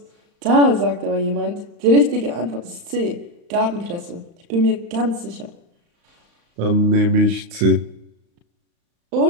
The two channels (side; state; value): left; late; 35 ms